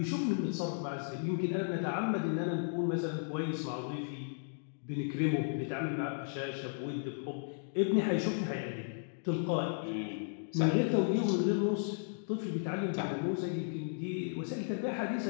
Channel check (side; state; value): right; silent; digital silence